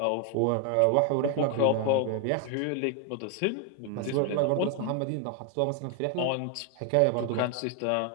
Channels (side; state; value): both; different; correlation 0.01